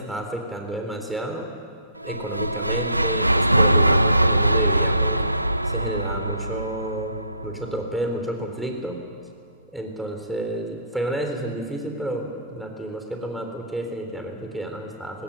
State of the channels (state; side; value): inverted; both; correlation -0.59